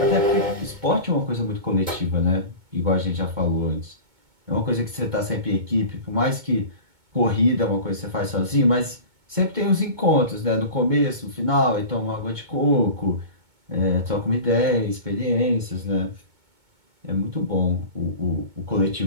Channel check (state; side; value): late; left; 2.2 ms